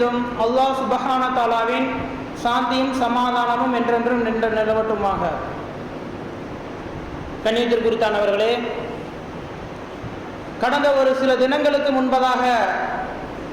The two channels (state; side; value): identical; both; correlation 1.00